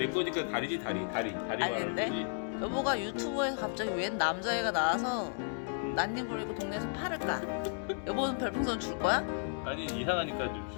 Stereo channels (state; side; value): silent; right; 55 dB below the other